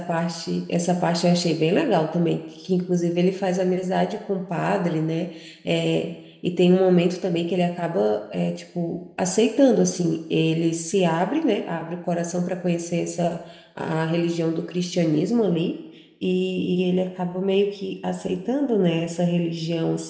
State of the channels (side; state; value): both; identical; correlation 1.00